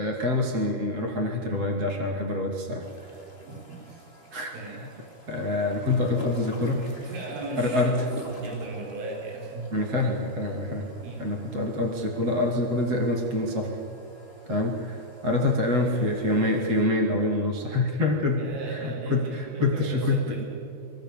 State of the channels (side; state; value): left; late; 13 ms